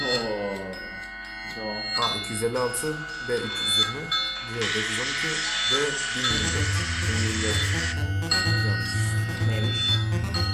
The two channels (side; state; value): both; identical; correlation 1.00